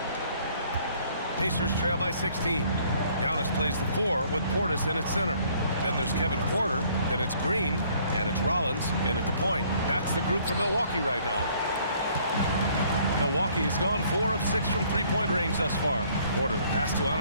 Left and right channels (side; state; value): both; inverted; correlation -0.61